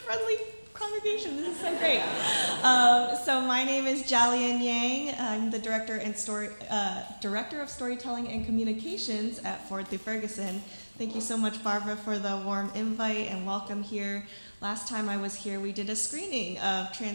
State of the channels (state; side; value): inverted; both; correlation -1.00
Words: congregation. This is so great. So my name is Jalian Yang. I'm the Director of Storytelling and Communications at Forward Through Ferguson. Thank you so much, Barbara, for the warm invite and welcome here. Last time I was here, we did a screening of